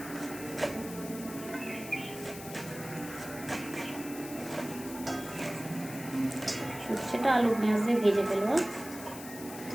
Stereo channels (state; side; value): noise; left; hiss, 13 dB below the sound